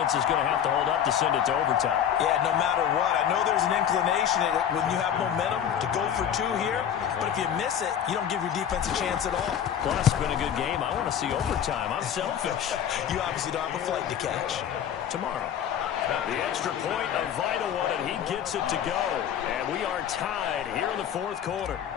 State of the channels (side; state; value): right; quieter; 9.2 dB